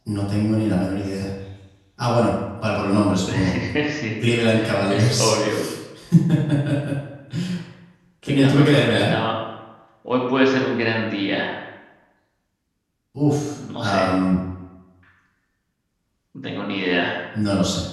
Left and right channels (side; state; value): both; identical; correlation 1.00